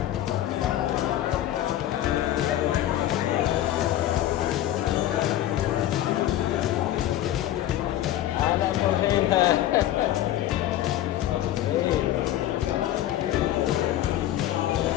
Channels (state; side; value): quieter; right; 13.0 dB